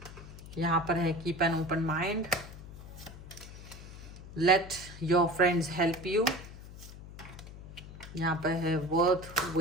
यहाँ पर है keep an open mind, let your friends help you, यहाँ पर है वर्थ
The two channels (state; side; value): noise; left; hum, 14 dB below the sound